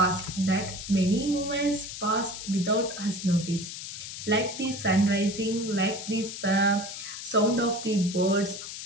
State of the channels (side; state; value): left; noise; hiss, 9 dB below the sound